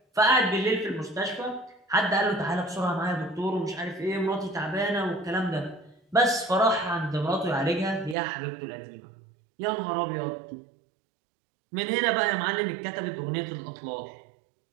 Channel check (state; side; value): drops out; left; at 8.2 s